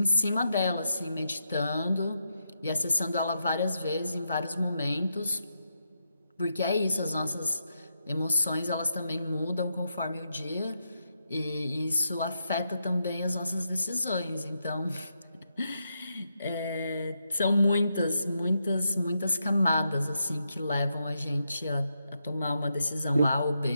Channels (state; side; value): inverted; both; correlation -0.82